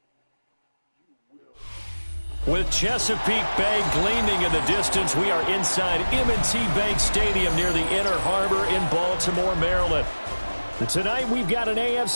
With Chesapeake Bay gleaming in the distance, we are inside M&T Bank Stadium near the Inner Harbor in Baltimore, Maryland. And tonight we've got an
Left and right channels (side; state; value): both; inverted; correlation -1.00